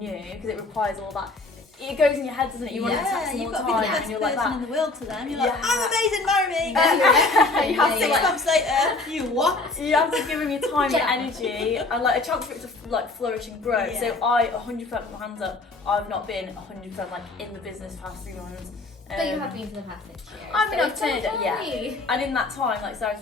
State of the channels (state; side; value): quieter; right; 3.3 dB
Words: because it requires all that. It goes in your head, doesn't it? You want to text them all you've the got to be time, the best and you're like person that. in the world to them. You're like, Yeah. I'm amazing, marry me. Yeah. You have Yeah. 6 months later, you what? You have to give them your time Yeah. and energy, and a chance for it to flourish and grow. Yeah. So I 100% put my hands up. I've not been 100% in the business the past 3 months. But you have been for the past 6 years. I mean, so I've it's turned it, okay. yeah. And in that time,